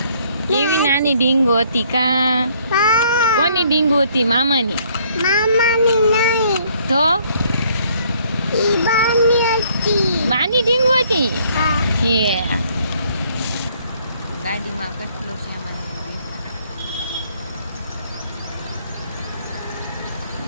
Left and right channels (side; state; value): both; inverted; correlation -0.64